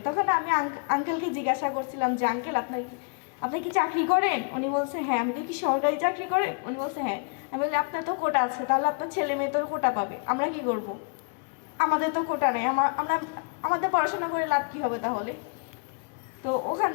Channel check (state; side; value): quieter; right; 36.1 dB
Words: তখন আমি আঙ্কেলকে জিজ্ঞাসা করছিলাম যে আঙ্কেল আপনি কি চাকরি করেন? উনি বলছে হ্যাঁ। আমি কি সরকারি চাকরি করেন? উনি বলছে হ্যাঁ। আমি বলি আপনার তো কোটা আছে, তাহলে আপনার ছেলে মেয়ে তোর কোটা পাবে, আমরা কি করব? আমাদের তো কোটা নেই, আমাদের পড়াশোনা করে লাভ কি হবে তাহলে? তো ওখান